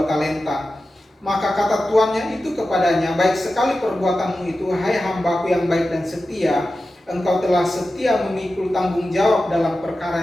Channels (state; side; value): normal; both; correlation 0.93